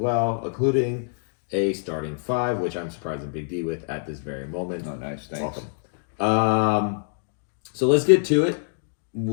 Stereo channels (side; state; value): right; silent; digital silence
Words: including a starting five, which I'm surprising Big D with at this very moment. Oh, nice. Thanks. Welcome. So let's get to it.